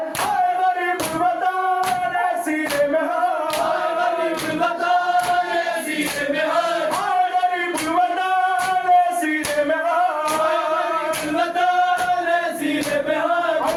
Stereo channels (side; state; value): both; identical; correlation 1.00